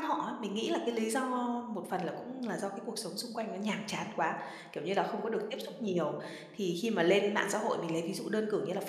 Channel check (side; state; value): both; identical; correlation 1.00